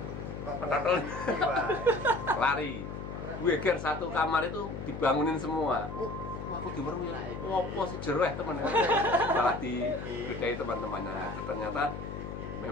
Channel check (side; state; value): left; noise; hum, 8 dB below the sound